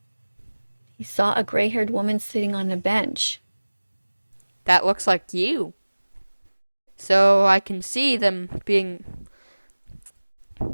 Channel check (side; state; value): both; inverted; correlation -1.00